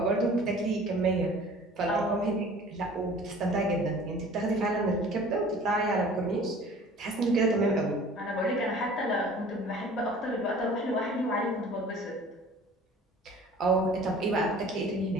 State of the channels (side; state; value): both; normal; correlation 0.47